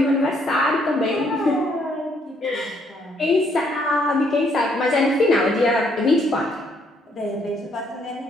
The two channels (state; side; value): normal; both; correlation 0.69